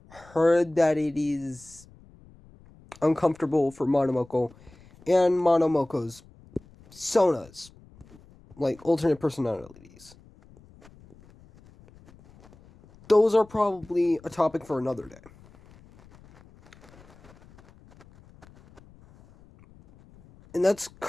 heard that it is uncomfortable for Monomoko and Monomoko's Sonas, like alternate personalities. Those are probably a topic for another day. And that's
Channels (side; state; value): left; noise; rumble, 25 dB below the sound